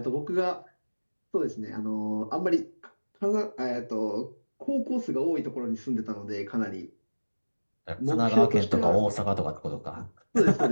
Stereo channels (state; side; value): inverted; both; correlation -1.00